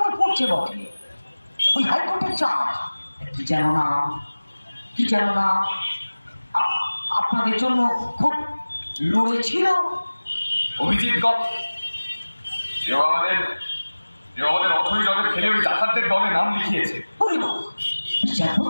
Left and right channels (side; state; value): both; inverted; correlation -1.00